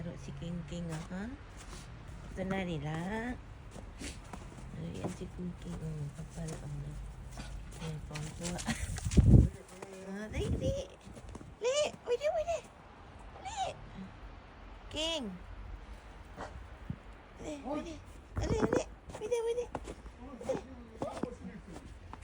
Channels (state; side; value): identical; both; correlation 1.00